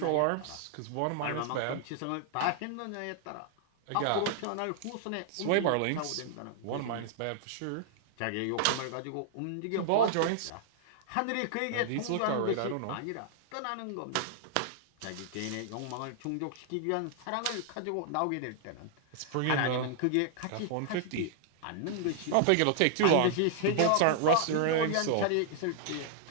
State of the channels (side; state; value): both; different; correlation -0.01